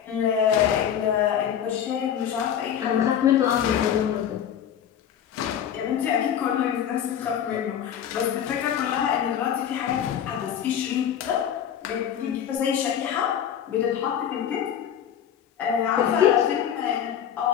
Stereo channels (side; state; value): right; quieter; 9.2 dB